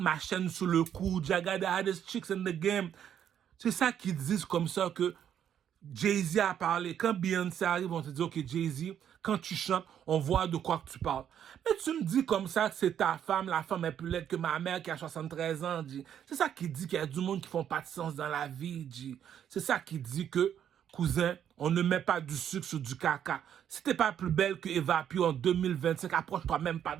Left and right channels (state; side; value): quieter; left; 9.4 dB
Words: chaîne sous le cou, Jaga the hottest chicks in the game, c'est ça qu'ils disent comme ça que Jay-Z a parlé. Quand Beyoncé arrive, on te dit, OK, Jay-Z, quand tu chantes, on voit de quoi que tu parles. Mais tu me dis comme ça que c'est ta femme, la femme est plus laide que ma mère qui a 73 ans, G. C'est ça qui dit qu'il y a du monde qui font pas de sens dans la vie, G. C'est ça qui dit que, cousin, on ne met pas du sucre sur du caca. Si t'es pas plus belle que Eva Pio en 2025, approche-toi même pas